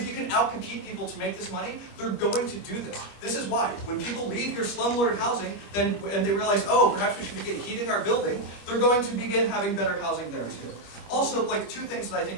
you can outcompete people to make this money, they're going to do this. This is why when people leave your slumlord housing, and they realize, oh, perhaps we should begin heating our building, they're going to begin having better housing there too. Also, like two things that I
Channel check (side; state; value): right; late; 25 ms